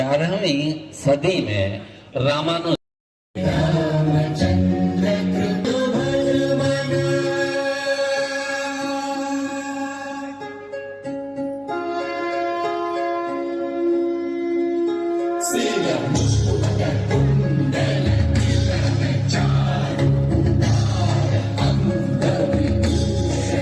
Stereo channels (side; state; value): both; identical; correlation 1.00